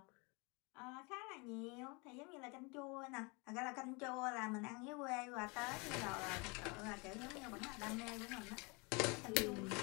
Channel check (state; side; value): quieter; right; 29.5 dB